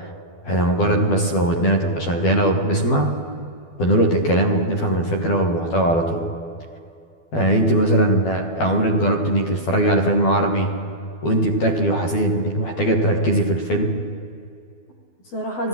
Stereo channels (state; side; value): late; right; 12 ms